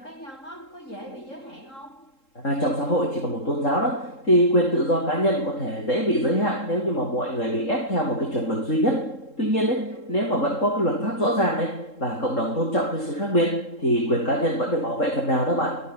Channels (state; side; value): late; right; 3.7 ms